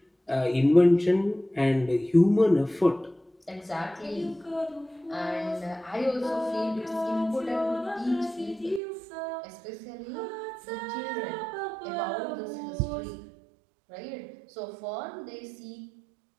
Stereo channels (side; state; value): left; drops out; at 8.8 s